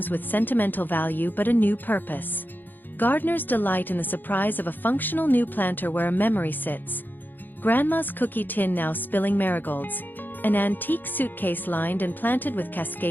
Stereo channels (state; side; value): late; right; 0.090 ms